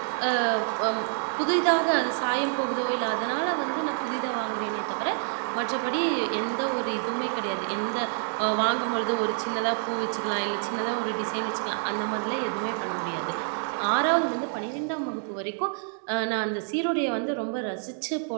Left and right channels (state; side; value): silent; left; 60 dB below the other